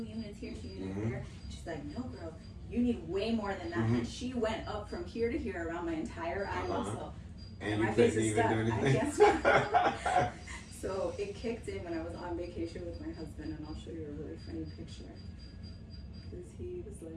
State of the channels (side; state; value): both; identical; correlation 1.00